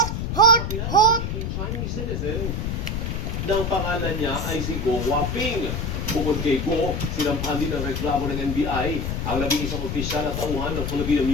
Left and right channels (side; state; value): left; noise; rumble, 2 dB below the sound